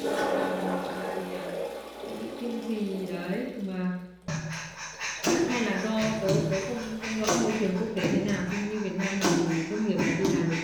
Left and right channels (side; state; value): both; identical; correlation 1.00